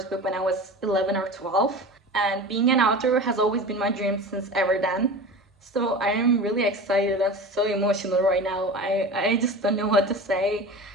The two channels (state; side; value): normal; both; correlation 0.32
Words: book when I was 11 or 12, and being an author has always been my dream since ever then. So I am really excited and so emotional right now. I just don't know what to say.